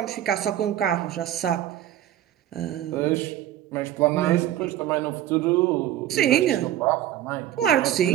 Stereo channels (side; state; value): left; quieter; 12.2 dB